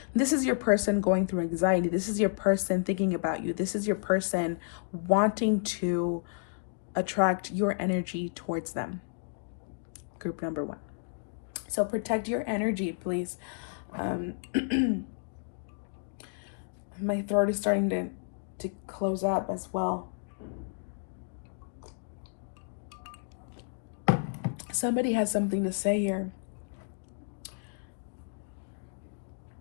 This is your person going through anxiety. This is your person thinking about you. This is your person wanting to attract your energy towards them. Group number 1. So protect your energy, please. My throat is starting to close up as well. Somebody has something to say here.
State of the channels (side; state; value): right; silent; digital silence